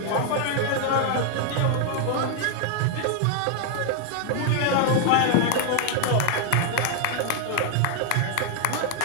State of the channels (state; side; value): different; both; correlation 0.00